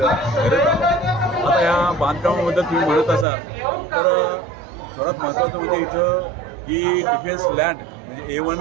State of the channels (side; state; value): left; drops out; at 3.2 s